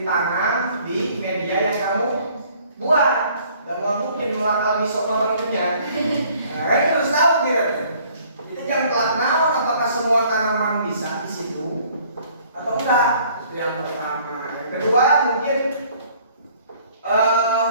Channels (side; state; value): both; inverted; correlation -0.58